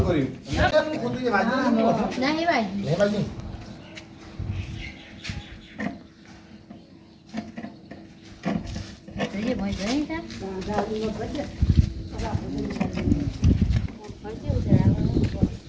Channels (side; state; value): both; identical; correlation 1.00